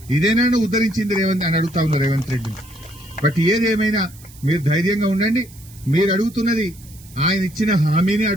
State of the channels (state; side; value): noise; right; hiss, 22 dB below the sound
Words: ఇదేనా నువ్వు ఉద్ధరించింది రేవంత్ అని అడుగుతా ఉన్నావు రేవంత్ రెడ్డిని. బట్ ఏదేమైనా మీరు ధైర్యంగా ఉండండి. మీరు అడుగుతున్నది ఆయన ఇచ్చిన హామీని